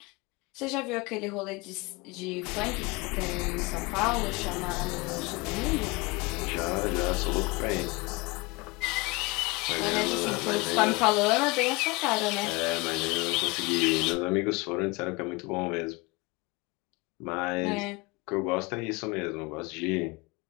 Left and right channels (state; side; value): quieter; right; 25.4 dB